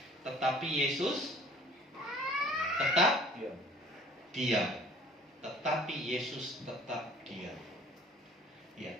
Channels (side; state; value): both; normal; correlation 0.52